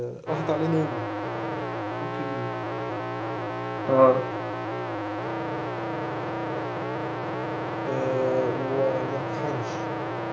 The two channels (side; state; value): both; identical; correlation 1.00